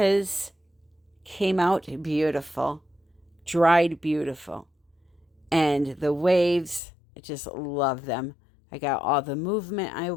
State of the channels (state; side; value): drops out; right; at 6.8 s